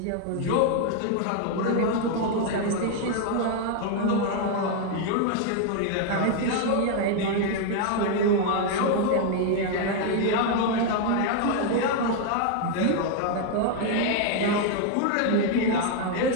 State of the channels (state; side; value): different; both; correlation 0.00